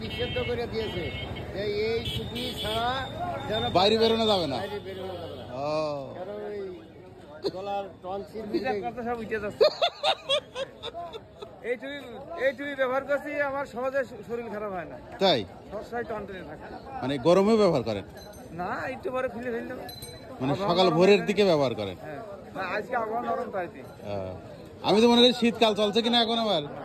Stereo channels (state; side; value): identical; both; correlation 1.00